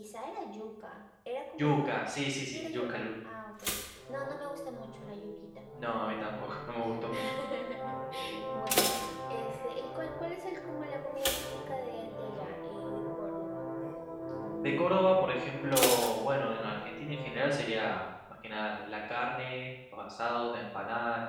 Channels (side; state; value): both; identical; correlation 1.00